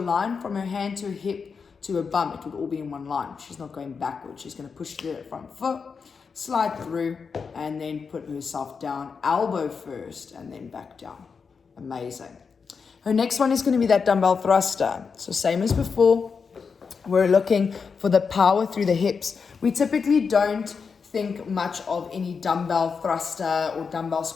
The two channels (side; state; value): right; quieter; 5.6 dB